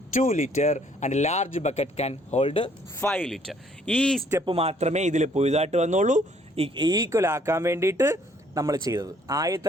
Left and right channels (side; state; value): both; normal; correlation 0.63